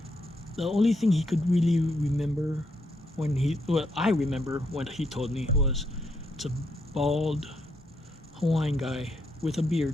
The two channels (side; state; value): both; normal; correlation 0.77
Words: The only thing he could really remember I remember when he told me was it's a bald Hawaiian guy with a